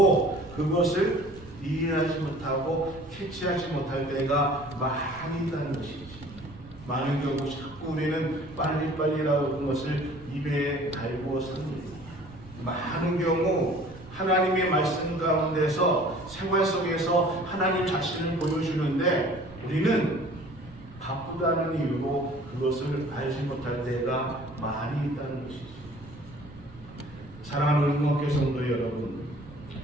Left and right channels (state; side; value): noise; right; rumble, 19 dB below the sound